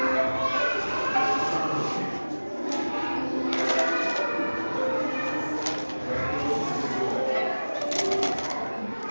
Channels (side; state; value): both; inverted; correlation -1.00